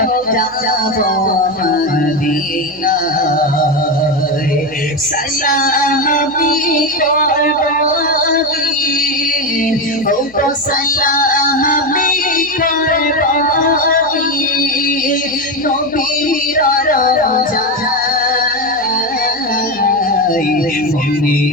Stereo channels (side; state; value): left; noise; hum, 28 dB below the sound